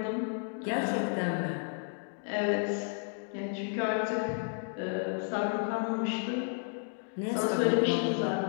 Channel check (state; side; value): silent; right; 56 dB below the other